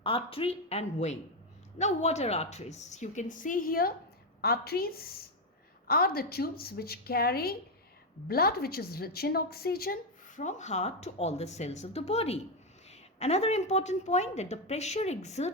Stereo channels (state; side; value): normal; both; correlation 0.05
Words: artery and vein. Now, what are arteries? You can see here, arteries are the tubes which carry blood which is rich in oxygen from heart to all the cells of the body. Another important point that the pressure